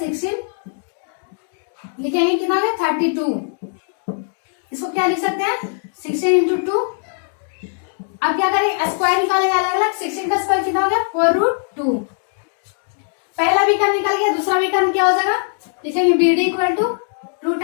लिखेंगे कितना होगा 32। इसको क्या लिख सकते हैं 16 × 2। अब क्या करेंगे स्क्वायर निकालेंगे अलग अलग 16 का स्क्वायर कितना हो गया 4√2 पहला विकर्ण निकल गया, दूसरा विकर्ण क्या हो जाएगा, लिखेंगे B D equal to root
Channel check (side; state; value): right; silent; 66 dB below the other